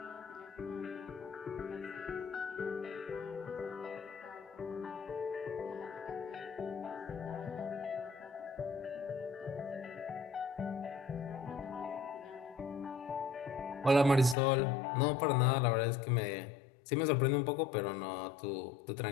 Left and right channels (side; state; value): right; drops out; at 14.4 s